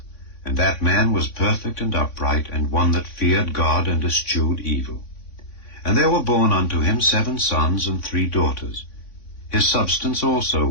and that man was perfect and upright, and one that feared God and eschewed evil. And there were born unto him 7 sons and 3 daughters. His substance also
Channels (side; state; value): right; late; 3.5 ms